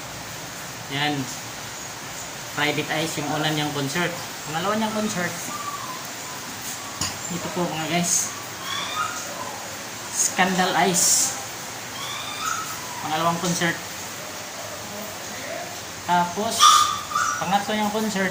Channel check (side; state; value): both; identical; correlation 1.00